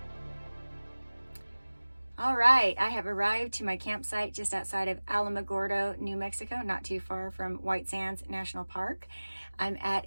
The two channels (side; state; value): both; inverted; correlation -1.00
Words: All right, I have arrived to my campsite just outside of Alamogordo, New Mexico, not too far from White Sands National Park. I'm at